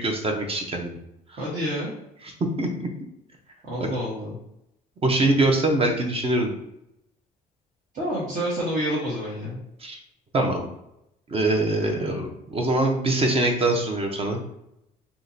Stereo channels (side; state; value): both; normal; correlation 0.49